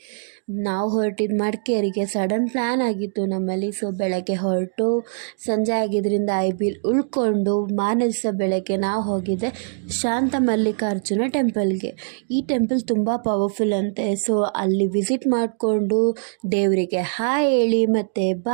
ನಾವು ಹೊರಟಿದ್ದು ಮಡಿಕೇರಿಗೆ. ಸಡನ್ ಪ್ಲ್ಯಾನ್ ಆಗಿತ್ತು ನಮ್ಮಲ್ಲಿ. ಸೊ ಬೆಳಗ್ಗೆ ಹೊರಟು ಸಂಜೆ ಆಗಿದ್ದರಿಂದ ಐಬಿಲ್ ಉಳ್ಕೊಂಡು ಮಾರನೇ ದಿವಸ ಬೆಳಗ್ಗೆ ನಾವು ಹೋಗಿದ್ದೆ ಶಾಂತ ಮಲ್ಲಿಕಾರ್ಜುನ ಟೆಂಪಲ್ಗೆ. ಈ ಟೆಂಪಲ್ ತುಂಬ ಪವರ್ಫುಲ್ ಅಂತೆ. ಸೊ ಅಲ್ಲಿ ವಿಸಿಟ್ ಮಾಡಿಕೊಂಡು ದೇವರಿಗೆ ಹಾಯ್ ಹೇಳಿ ಮತ್ತು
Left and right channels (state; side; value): silent; left; digital silence